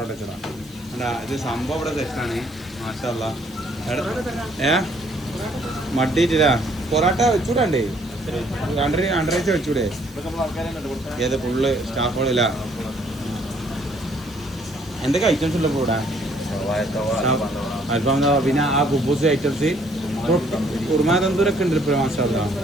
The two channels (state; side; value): noise; right; hiss, 25 dB below the sound